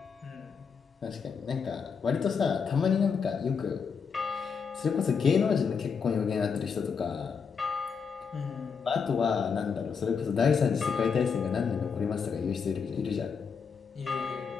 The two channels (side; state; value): right; quieter; 6.0 dB